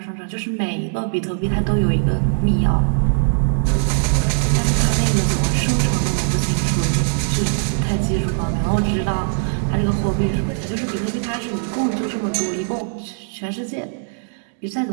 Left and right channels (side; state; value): left; silent; digital silence